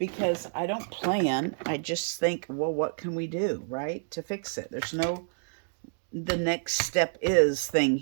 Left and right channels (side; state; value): left; silent; digital silence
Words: I don't plan, I just think, well, what can we do, right, to fix it? There's no, the next step is thing